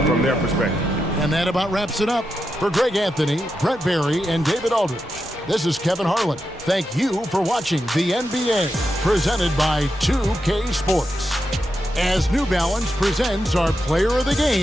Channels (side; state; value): both; normal; correlation 0.87